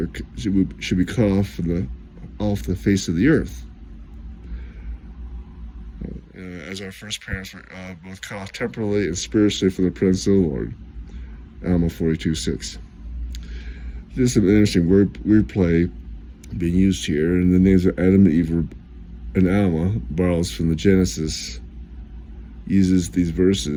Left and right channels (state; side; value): identical; both; correlation 1.00